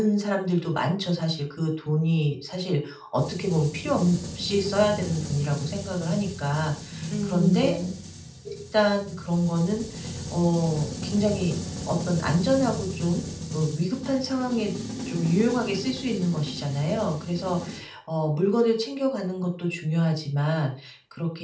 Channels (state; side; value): identical; both; correlation 1.00